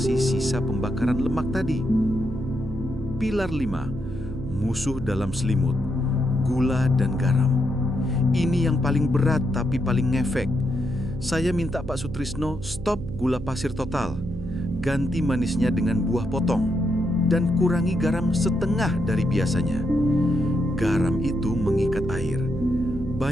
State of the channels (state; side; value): noise; right; hum, 10 dB below the sound